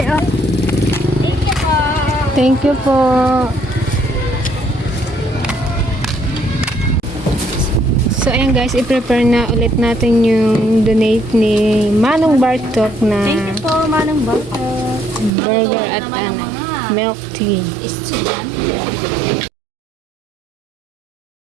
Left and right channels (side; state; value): left; drops out; at 15.3 s